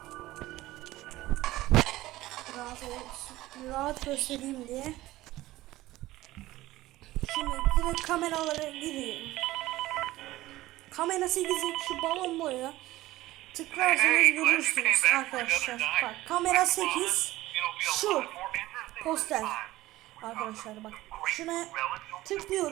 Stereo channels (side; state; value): left; quieter; 16.9 dB